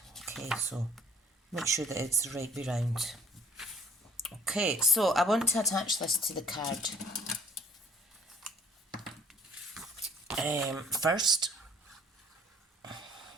Okay, so make sure that it's the right way round. Okay, so I want to attach this to the card first.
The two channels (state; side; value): normal; both; correlation 0.57